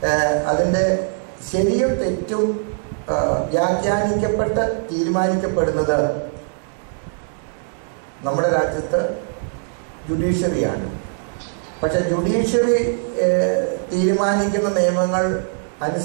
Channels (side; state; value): left; silent; 65 dB below the other